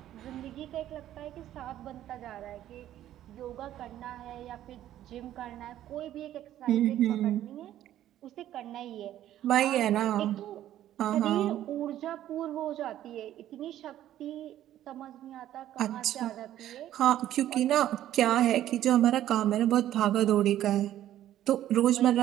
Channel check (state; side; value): quieter; left; 12.4 dB